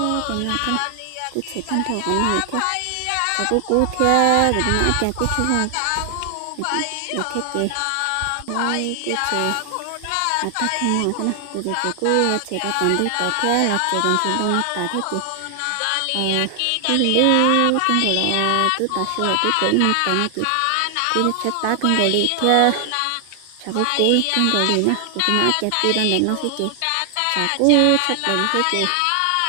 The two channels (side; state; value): both; different; correlation 0.00